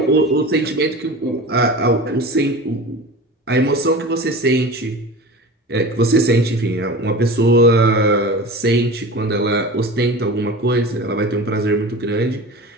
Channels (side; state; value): both; normal; correlation 0.33